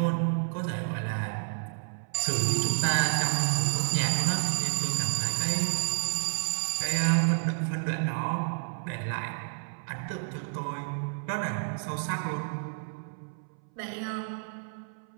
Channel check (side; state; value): left; silent; 58 dB below the other